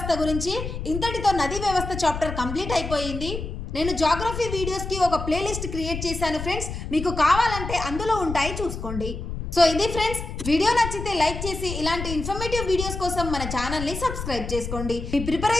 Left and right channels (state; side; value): noise; left; rumble, 6 dB below the sound